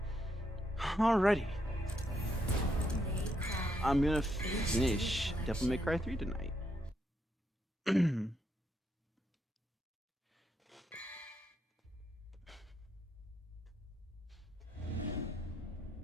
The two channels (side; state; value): both; normal; correlation 0.78